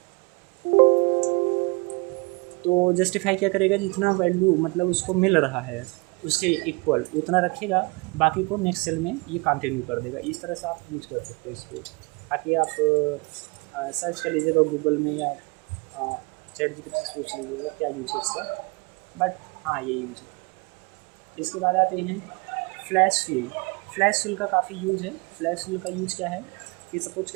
तो जस्टिफाई क्या करेगा, जितना वैल्यू मतलब उसको मिल रहा है उसके इक्वल उतना रखेगा, बाकी को नेक्स्ट सेल में ये कंटिन्यू कर देगा। इस तरह से आप यूज कर सकते हो इसको, ताकि आप सर्च कर लीजिएगा गूगल में या चैट जीपीटी से पूछ लीजिएगा क्या यूज है इसका, बट हाँ ये यूज है। इसके बाद आते हैं फ्लैश फिल। फ्लैश फिल का काफ़ी यूज है। फ्लैश फिल का यूज क्या है कि सपोज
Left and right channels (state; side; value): quieter; left; 29.3 dB